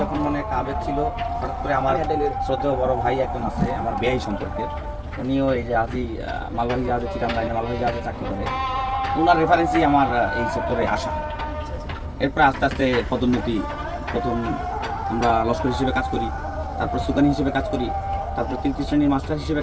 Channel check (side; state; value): both; identical; correlation 1.00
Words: যখন মনে একটা আবেগ ছিল, হঠাৎ করে আমার শ্রদ্ধেয় বড় ভাই একজন আছে আমার বেয়াই সম্পর্কে, উনিও এই যে আজি মালবাহী জাহাজে চিটাং লাইনে মালবাহী জাহাজে চাকরি করে, ওনার রেফারেন্সই আমার এই সেক্টরে আসা। এরপর আস্তে আস্তে পদোন্নতি, প্রথম আমরা লস্কর হিসেবে কাজ করি, তারপর সুকানি হিসেবে কাজ করি, তারপর তৃতীয় শ্রেণীর মাস্টার হিসেবে